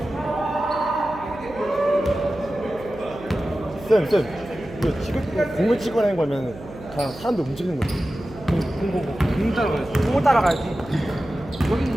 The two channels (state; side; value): noise; right; hum, 16 dB below the sound